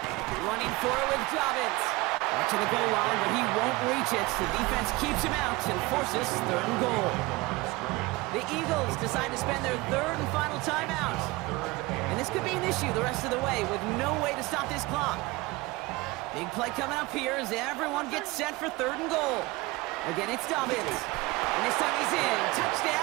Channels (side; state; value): left; quieter; 22.0 dB